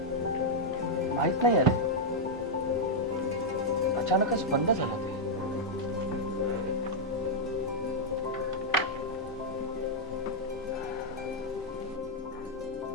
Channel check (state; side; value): normal; both; correlation -0.04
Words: माहित नाही अरे, अचानकच बंद झाला ते.